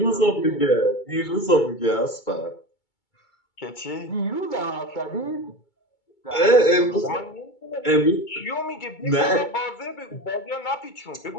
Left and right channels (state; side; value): late; right; 2.2 ms